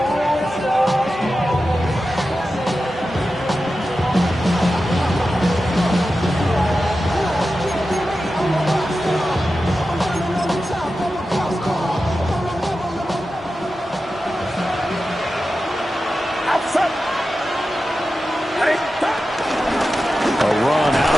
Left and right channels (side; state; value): both; normal; correlation 0.92